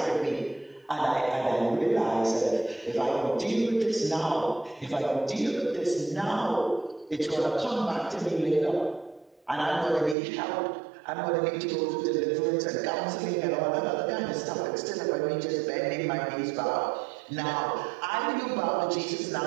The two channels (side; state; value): left; drops out; at 10.2 s